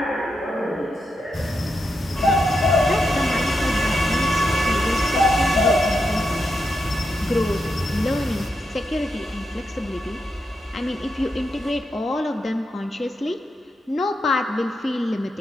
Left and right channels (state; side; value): normal; both; correlation 0.85